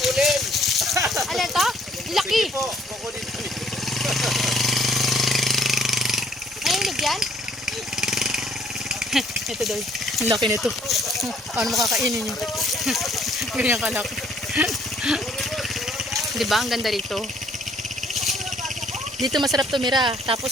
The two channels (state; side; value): normal; both; correlation 0.63